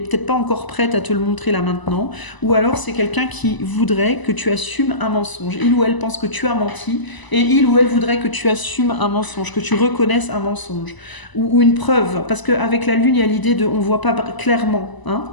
pas encore prête à te le montrer là maintenant, ou alors c'est quelqu'un qui voudrait que tu assumes un mensonge. Il ou elle pense que tu as menti, et il ou elle voudrait que tu assumes un mensonge, que tu reconnaisses un mensonge, ou une preuve, parce qu'avec la lune, il y a l'idée de on ne voit pas clairement, hein.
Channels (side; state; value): right; late; 1.0 ms